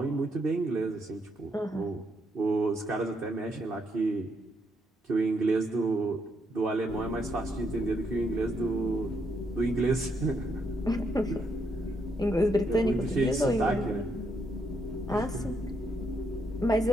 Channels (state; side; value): normal; both; correlation 0.77